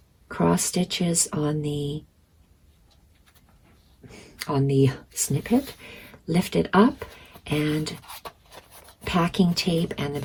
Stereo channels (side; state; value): both; identical; correlation 1.00